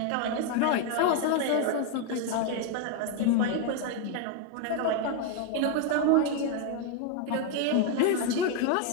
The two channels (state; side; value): different; both; correlation 0.01